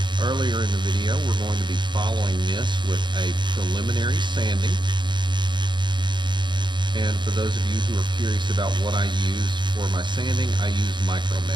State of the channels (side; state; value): left; late; 0.22 ms